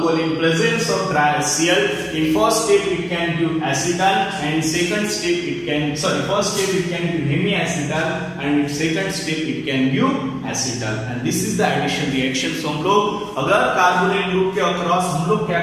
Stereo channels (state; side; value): identical; both; correlation 1.00